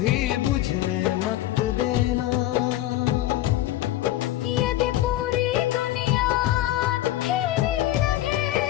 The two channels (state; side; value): quieter; right; 14.6 dB